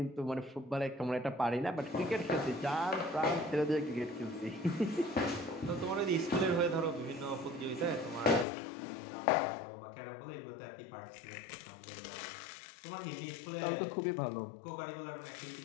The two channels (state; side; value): drops out; right; at 8.5 s